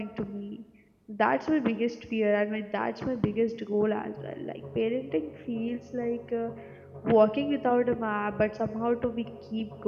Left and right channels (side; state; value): both; identical; correlation 1.00